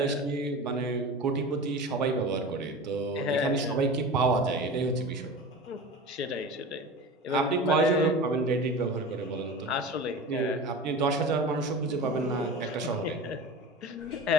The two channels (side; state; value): both; normal; correlation 0.32